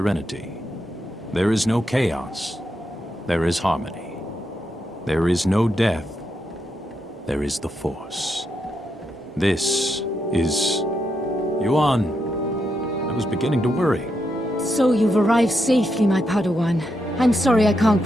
There is no chaos, there is harmony. There is no death, there is the Force. This is... Yuan, I was beginning to worry. So you've arrived safely, my Padawan. I'm sorry I can't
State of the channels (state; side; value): normal; both; correlation 0.82